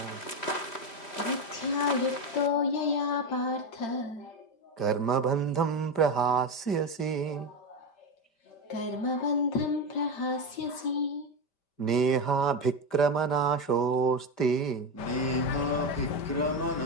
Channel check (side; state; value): right; late; 5.1 ms